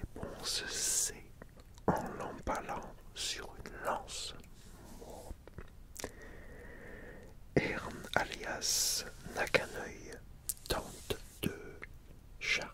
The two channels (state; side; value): identical; both; correlation 1.00